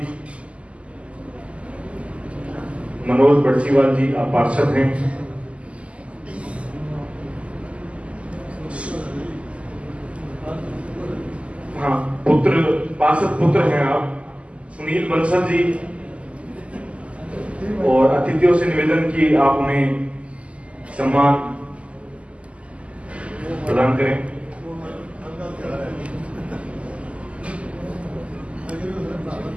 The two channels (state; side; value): late; left; 0.060 ms